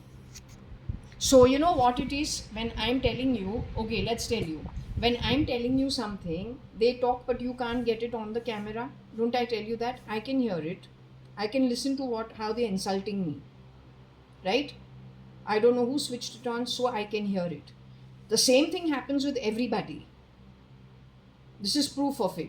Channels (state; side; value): identical; both; correlation 1.00